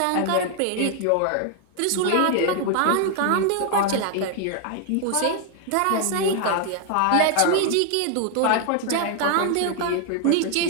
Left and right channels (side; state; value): both; different; correlation 0.00